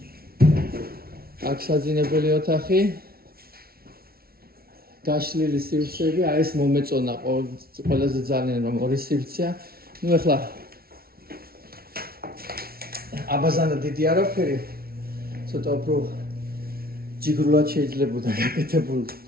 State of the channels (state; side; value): late; left; 0.44 ms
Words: აქ საძინებელი ოთახი. გაშლილი სივრცეები, აი ეს მომეწონა ყველაზე ძალიან რომ ორი სივრცეა. ნუ ეხლა აბაზანა დიდი არაფერი. ცოტა უფრო ჯიგრულად შეიძლებოდა